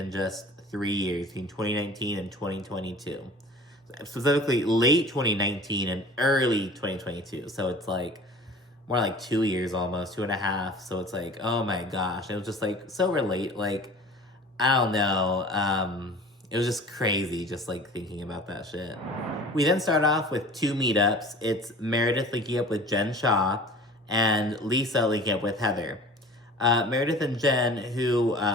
just 3 years, between 2019 and 2022. Specifically, late 2019 and early 2022. So it's like more like 2 years almost, 2.5. So it's like, oh my gosh. It was just like so relate. Like, I don't know. It was just crazy just like thinking about that shit. We then start off with 2 meetups. It's Meredith linking up with Jen Shah and Lisa linking up with Heather. Meredith and Jen, who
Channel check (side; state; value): both; normal; correlation 0.43